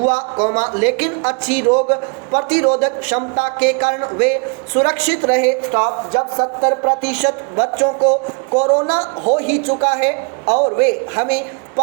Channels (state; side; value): quieter; left; 35.2 dB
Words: कॉमा लेकिन अच्छी रोग प्रतिरोधक क्षमता के कारण वे सुरक्षित रहे स्टॉप। जब 70% बच्चों को कोरोना हो ही चुका है और वे हमें